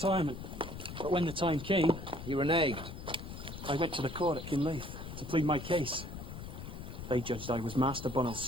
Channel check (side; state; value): left; noise; rumble, 9 dB below the sound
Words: But when the time came... You reneged? I went to the court at Kinleith to plead my case. They judged I was Master Bonnell's